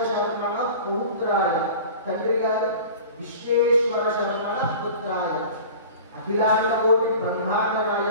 శర్మణ పుత్రాయ, తండ్రి గారు విశ్వేశ్వర శర్మణ పుత్రాయ, అఖిలాండ కోటి బ్రహ్మాండ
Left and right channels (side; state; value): both; inverted; correlation -0.39